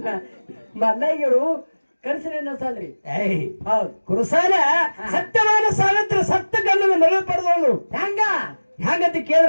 ಮಲ್ಲಯ್ಯರು ಕನಸಿನ ಸಾಲ್ರಿ ಏಯ್ ಹೌದು ಕುರುಸಾಲ ಸತ್ಯವಾದ ಸಾವಿತ್ರ ಸತ್ತ ಗಂಡನ ಮರಳು ಪಡೆದವಳು ಹೆಂಗ ಹ್ಯಾಂಗಂತ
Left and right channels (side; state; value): both; inverted; correlation -1.00